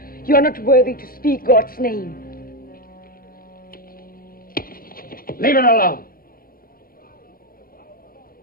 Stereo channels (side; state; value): right; late; 0.42 ms